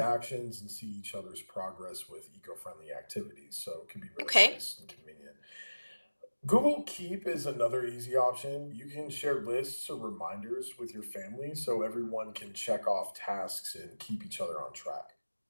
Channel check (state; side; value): inverted; both; correlation -1.00